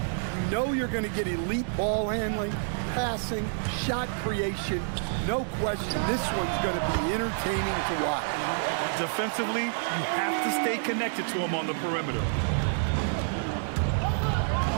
You know you're going to get elite ball handling, passing, shot creation. No question, this one's going to be entertaining to watch. Defensively, you have to stay connected to him on the perimeter.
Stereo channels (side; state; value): left; silent; digital silence